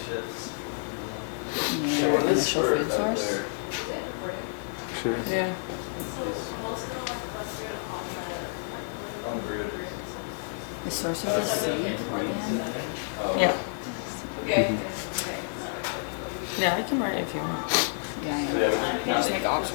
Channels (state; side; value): silent; right; digital silence